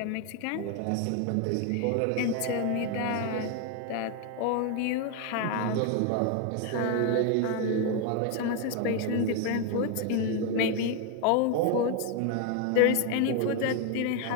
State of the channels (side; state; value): both; different; correlation 0.01